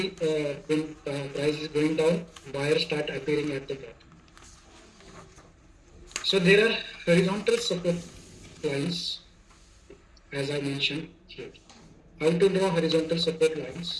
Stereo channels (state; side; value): identical; both; correlation 1.00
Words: when price is going down, buyers start appearing at the bottom. So there are horizontal support lines, as I mentioned here. How to draw horizontal support